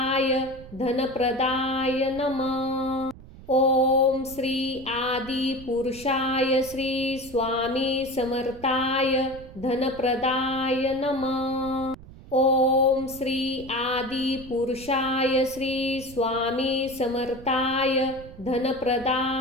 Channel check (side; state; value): right; noise; rumble, 18 dB below the sound